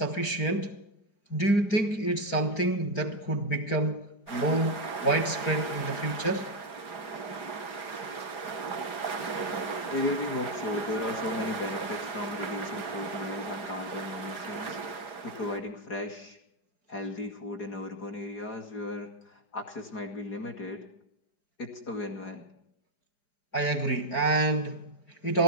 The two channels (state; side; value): late; right; 4.9 ms